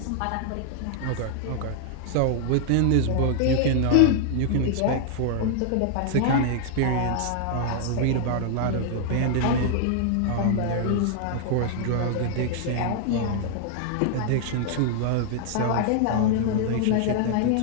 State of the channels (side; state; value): both; different; correlation 0.00